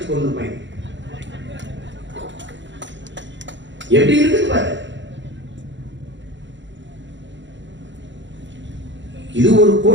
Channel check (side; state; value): left; late; 0.54 ms